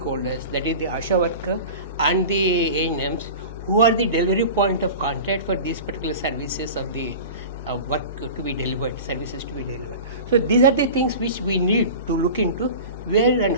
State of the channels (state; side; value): inverted; both; correlation -0.34